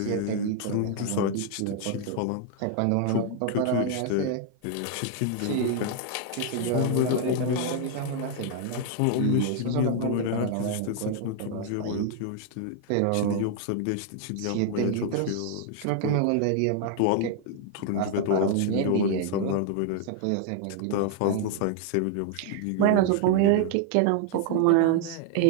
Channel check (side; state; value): both; different; correlation 0.00